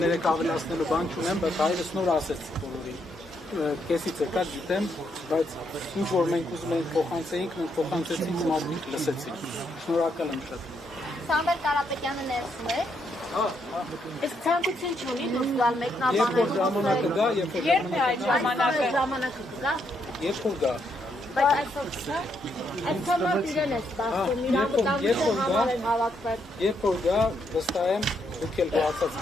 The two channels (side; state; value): both; normal; correlation 0.77